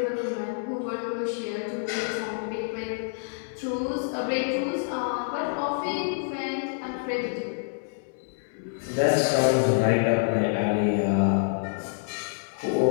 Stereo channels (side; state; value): right; silent; 60 dB below the other